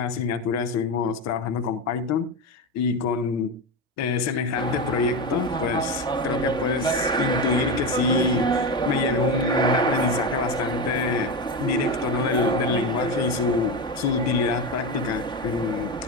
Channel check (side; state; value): both; normal; correlation 0.17